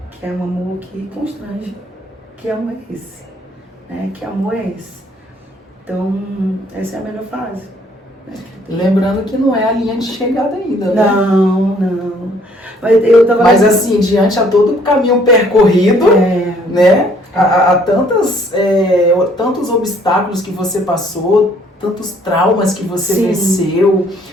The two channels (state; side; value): normal; both; correlation 0.62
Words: Que é um amor que constrange. Que amor é esse? Né? Que amor é esse? Então, essa é a melhor fase. Lembrando que não é a linha de chegada ainda, né? Não. Mas assim, diante a todo o caminho percorrido, né? Há tantos obstáculos que você passou, tantos traumas que você venceu,